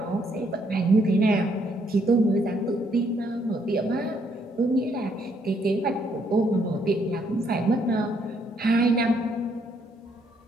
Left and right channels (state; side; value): normal; both; correlation 0.71